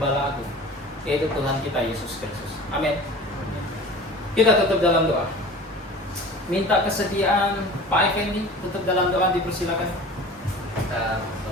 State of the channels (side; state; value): both; normal; correlation 0.39